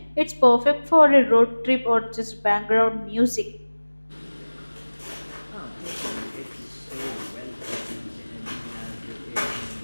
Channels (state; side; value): inverted; both; correlation -1.00